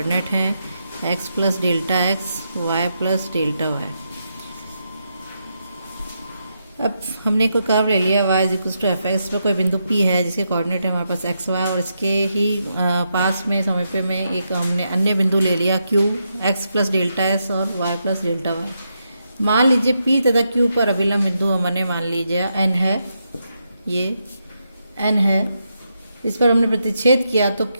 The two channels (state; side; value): inverted; both; correlation -0.83